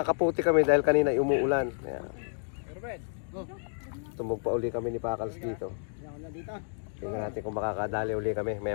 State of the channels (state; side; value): silent; right; digital silence